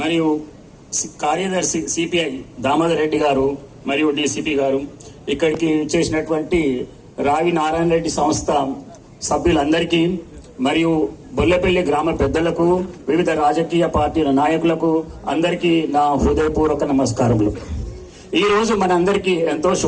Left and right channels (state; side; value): identical; both; correlation 1.00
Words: మరియు కార్యదర్శి సిపిఐ దామోదర్ రెడ్డి గారు, మరియు డిసిపి గారు, ఇక్కడికి చేసినటువంటి రావి నారాయణ రెడ్డి సంస్థ సభ్యులందరికీ, మరియు బొల్లపల్లి గ్రామ పెద్దలకు, వివిధ రాజకీయ పార్టీల నాయకులకు అందరికీ నా హృదయపూర్వక నమస్కారములు. ఈ రోజు మనందరికీ ఎంతో